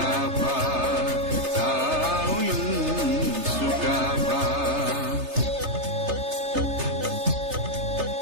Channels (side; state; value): left; late; 3.3 ms